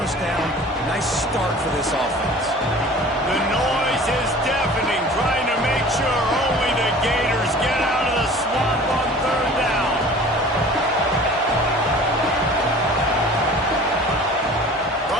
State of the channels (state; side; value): normal; both; correlation 0.44